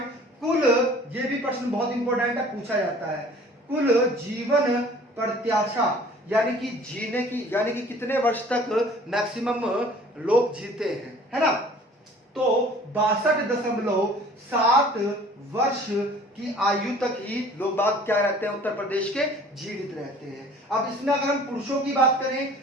कुल, ये भी प्रश्न बहुत इंपॉर्टेंट है, पूछा जाता है, कुल जीवन प्रत्याशा यानी कि जीने की, यानी कि कितने वर्ष तक मैक्सिमम लोग जीते हैं, है ना? तो 62.7 वर्ष की आयु तक ही लोग बात क्या रहते हैं? उत्तर प्रदेश के जीवित रहते हैं। अब इसमें अगर हम पुरुषों की बात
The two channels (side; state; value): both; normal; correlation 0.50